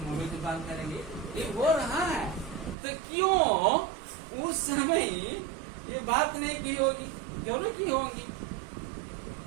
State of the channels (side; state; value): left; drops out; at 2.8 s